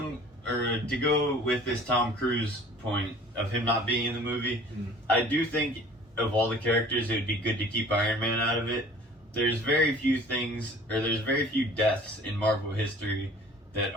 go with this Tom Cruise point of him not being in the movie, I do think of all the characters, it would be good to keep Iron Man out of it. There's very few deaths in Marvel history that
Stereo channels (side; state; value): both; normal; correlation 0.48